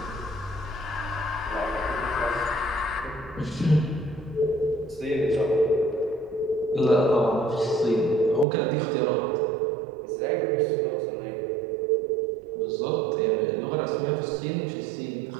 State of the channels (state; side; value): drops out; left; at 8.5 s